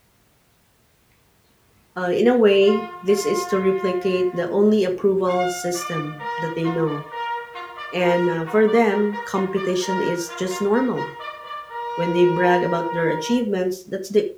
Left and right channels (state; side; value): identical; both; correlation 1.00